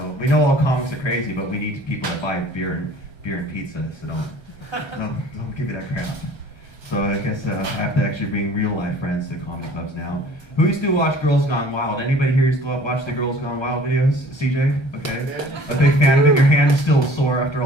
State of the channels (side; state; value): right; late; 1.3 ms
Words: we know all comics are crazy, but we need people that buy beer and pizza, so don't give me that crap. So I guess I have to actually bring real life friends to comedy clubs now. Who used to watch Girls Gone Wild? Anybody here used to watch the Girls Gone Wild videos? CJ? Okay. A big fan of it? Your hand is still sore after